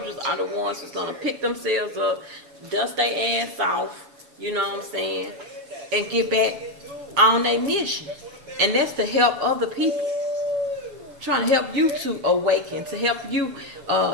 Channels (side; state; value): left; late; 7.4 ms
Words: are the ones that's going to pick themselves up, dust their ass off, you know what I'm saying, and get back on their mission. And that's to help other people. Trying to help you to awaken, to help you